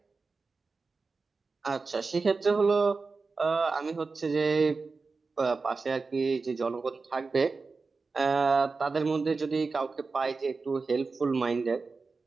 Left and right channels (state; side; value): quieter; left; 4.2 dB